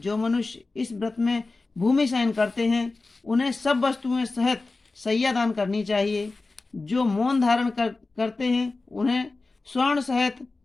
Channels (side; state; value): right; quieter; 3.5 dB